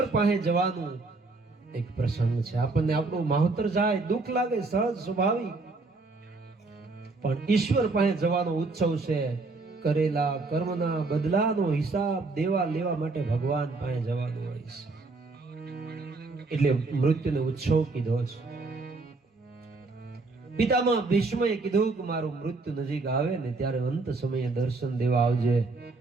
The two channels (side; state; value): left; quieter; 3.6 dB